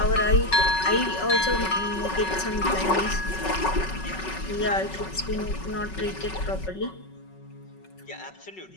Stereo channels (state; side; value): late; right; 5.3 ms